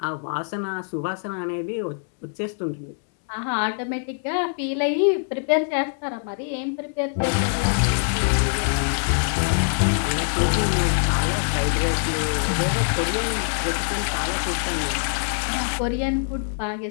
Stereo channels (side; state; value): right; silent; 63 dB below the other